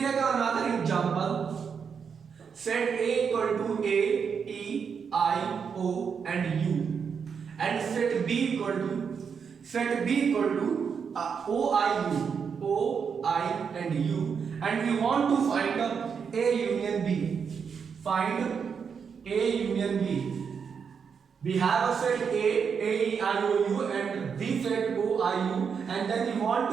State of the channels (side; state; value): left; quieter; 6.5 dB